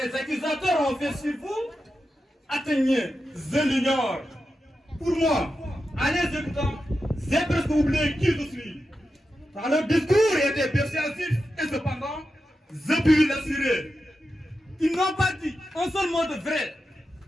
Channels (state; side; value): normal; both; correlation 0.90